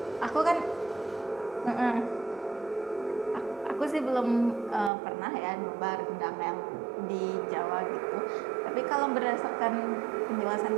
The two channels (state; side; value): drops out; left; at 4.9 s